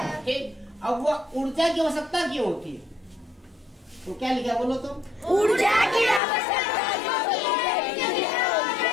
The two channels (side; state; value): right; drops out; at 6.2 s